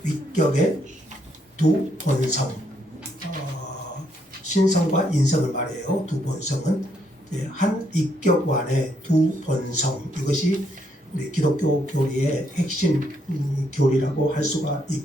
위격의 두 본성, 신성과 인성을 말해요. 두 본성은 한 위격 안에 두 본성, 이것이 우리 기독교 교리의 핵심 교리라고 할 수가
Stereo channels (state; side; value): normal; both; correlation 0.74